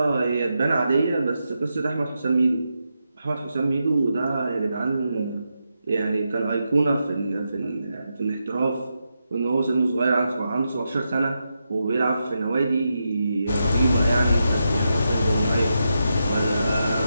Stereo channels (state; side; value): inverted; both; correlation -0.86